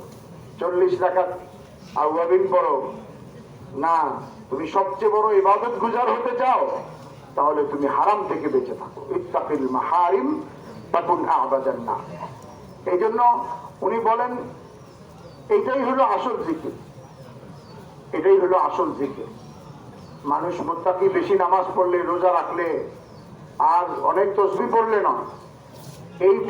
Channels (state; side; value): identical; both; correlation 1.00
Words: 40 রাকাত আওয়াবিন পড়ো, না তুমি সবচেয়ে বড় ইবাদত গুজার হতে চাও, তাহলে তুমি হারাম থেকে বেঁচে থাকো। ইত্তাকিল মাহারিম তাকুন আবাদান নাস। এই জন্য উনি বলেন এটাই হলো আসল জিকির, এটাই হলো আসল জিকির। মানুষ মুত্তাকি বেশি নামাজ পড়লে, রোজা রাখলে, আর অনেক তসবিহ পড়লে না,